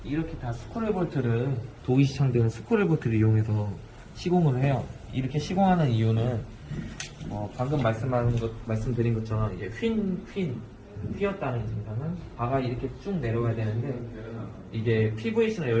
이렇게 다 스크롤볼트를 도기시창들은 스크롤볼트를 이용해서 시공을 해요. 이렇게 시공하는 이유는 방금 말씀드린 것처럼 이제 휘었다는 증상은 바가 이렇게 쭉 내려가야 되는데 이게 PVC는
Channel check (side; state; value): both; identical; correlation 1.00